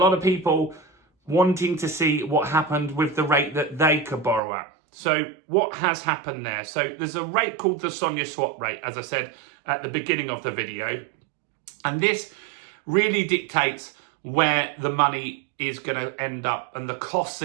of people wanting to see what happened with the rate that they could borrow at. So what has happened there? So there's a rate called the Sonia swap rate, as I said at the beginning of the video. And this really dictates where the money is going to end up and the costs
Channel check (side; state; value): left; drops out; at 4.4 s